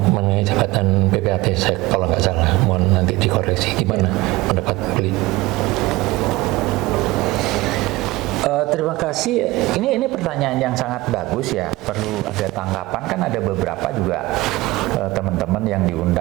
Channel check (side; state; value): left; quieter; 20.0 dB